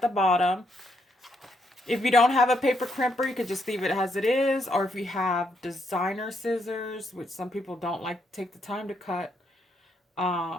the bottom. If you don't have a paper crimper, you could just leave it as it is. Or if you have designer scissors, which some people don't like to take the time to cut,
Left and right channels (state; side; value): normal; both; correlation 0.76